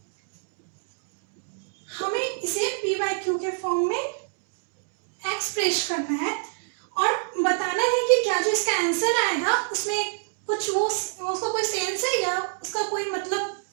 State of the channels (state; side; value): silent; left; digital silence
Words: हमें इसे p by q के फॉर्म में एक्सप्रेस करना है और बताना है कि क्या जो इसका आंसर आएगा उसमें कुछ वो उसका कोई सेंस है या उसका कोई मतलब